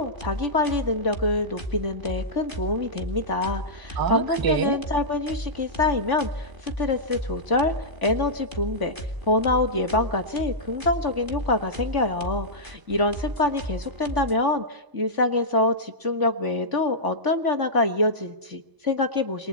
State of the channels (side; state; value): left; late; 1.0 ms